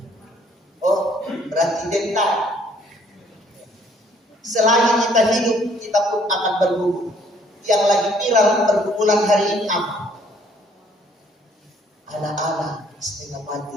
Oh, berarti dental. Selagi kita hidup, kita pun akan bergumul. Yang lagi viral pergumulan hari ini apa? Anak-anak setengah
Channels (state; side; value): normal; both; correlation 0.62